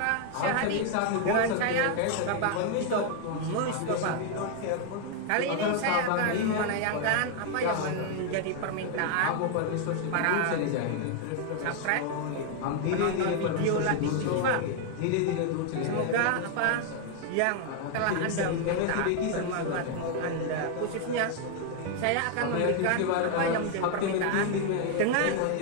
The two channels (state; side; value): different; both; correlation 0.00